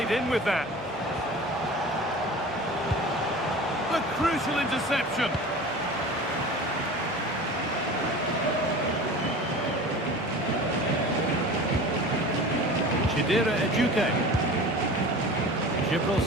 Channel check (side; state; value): both; normal; correlation 0.37